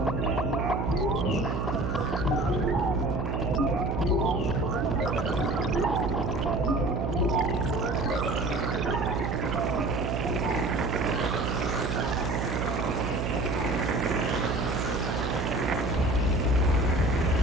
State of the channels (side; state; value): right; noise; hum, 2 dB below the sound